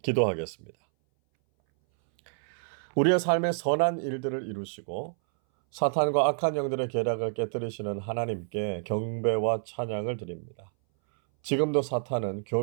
기도하겠습니다. 우리의 삶의 선한 일들을 이루시고 사탄과 악한 영들의 계략을 깨뜨리시는 하나님께 경배와 찬양을 드립니다. 지금도 사탄은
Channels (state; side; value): silent; left; 59 dB below the other